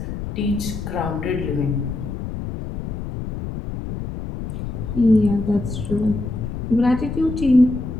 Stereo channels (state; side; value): noise; left; rumble, 6 dB below the sound